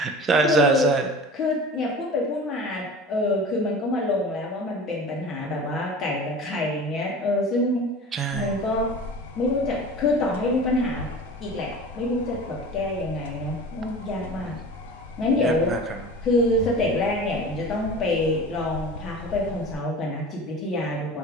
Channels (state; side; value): normal; both; correlation 0.37